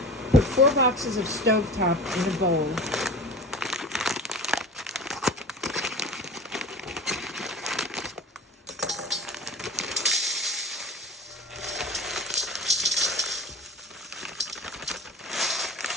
Put 4 boxes of stovetop in a bowl.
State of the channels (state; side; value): normal; both; correlation 0.33